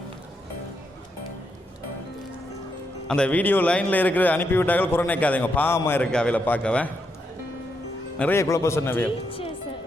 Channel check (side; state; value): both; normal; correlation 0.81